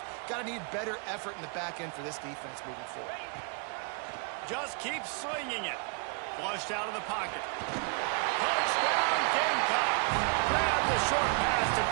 Got to need better effort in the back end for this defense moving forward. Just keep swinging it. Flushed out of the pocket. Touchdown, Gamecock. Grab the short pass to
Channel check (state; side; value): quieter; left; 37.9 dB